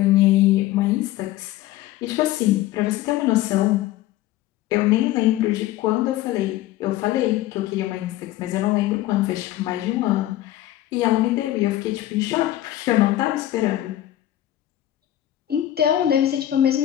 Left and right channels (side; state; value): right; quieter; 14.2 dB